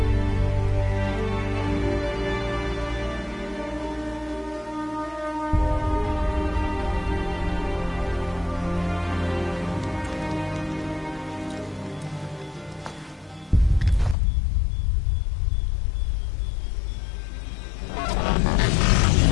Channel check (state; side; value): drops out; right; at 14.2 s